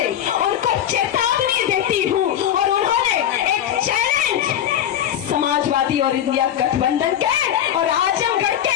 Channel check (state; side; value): quieter; right; 10.4 dB